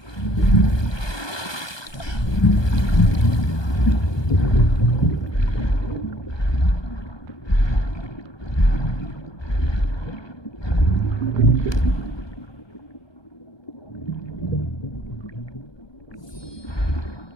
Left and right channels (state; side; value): late; right; 1.2 ms